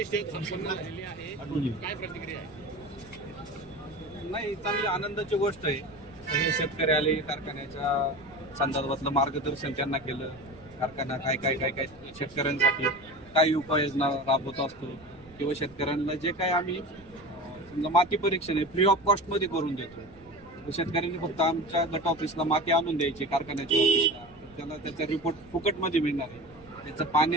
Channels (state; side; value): noise; right; rumble, 24 dB below the sound